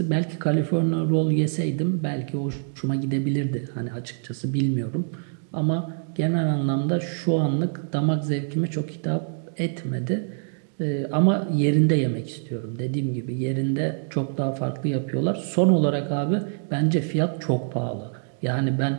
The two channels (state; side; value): silent; left; digital silence